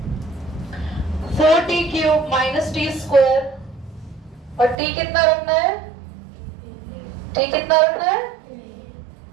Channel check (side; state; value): left; drops out; at 4.8 s